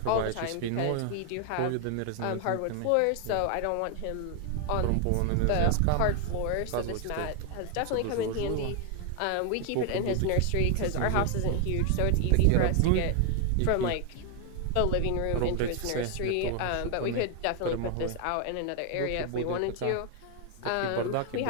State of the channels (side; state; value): both; different; correlation 0.00